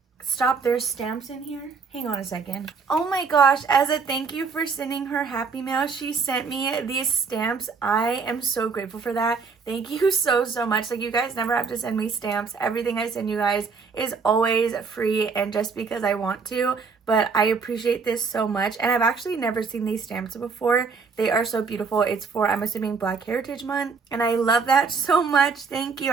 Stop, there's stamps in here. Hang on a second. Oh my gosh, as a thank you for sending her Happy Mail, she sent me these stamps. I am so grateful for that. Thank you so much. Like, you guys never have to send me stamps. Everything I send you guys is always free and just because I want to. But I appreciate this so much. And I've actually never seen these stamps before. They are so beautiful. It's for, I'm assuming, Black Heritage Month. And I love that so much. Thank you.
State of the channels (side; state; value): left; quieter; 5.1 dB